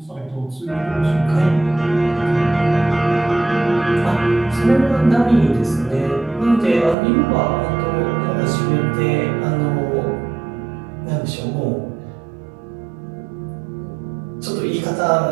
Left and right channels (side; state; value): left; drops out; at 7.0 s